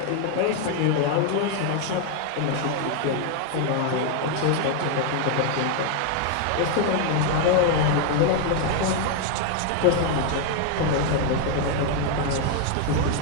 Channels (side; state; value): both; different; correlation 0.01